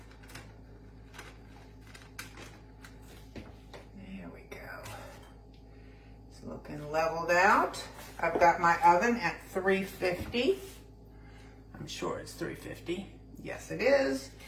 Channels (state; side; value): identical; both; correlation 1.00